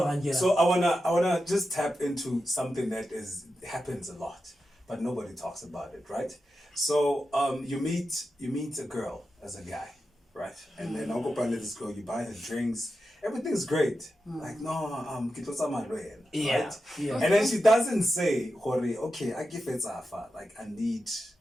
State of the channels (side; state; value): both; normal; correlation 0.90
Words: I wanna just tap into something that happens a lot, but nobody talks about it, right? So you meet a girl as a guy, right? And then I'll go find this girl, you buy her drinks. Everything's great. Like, no, right? Yeah. And then she doesn't say, okay, I give it Zafa. Like, I need